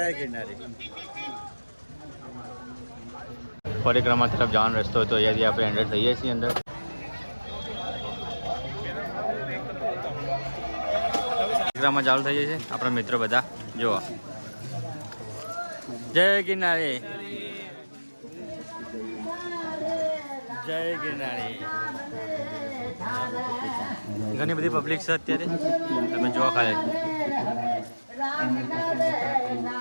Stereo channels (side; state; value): both; inverted; correlation -1.00